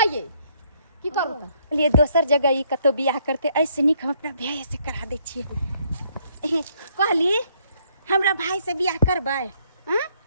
ये की करू त लिए दोसर जगह ई कतो बियाह करते, ऐसे निक हम अपना भाई से करा दे छिए। कहली हमरा भाई से बियाह करबै?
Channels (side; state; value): both; inverted; correlation -0.68